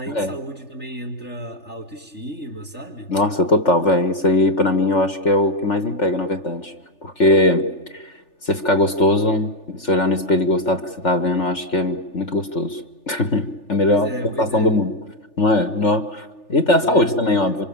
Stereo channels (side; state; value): right; late; 3.4 ms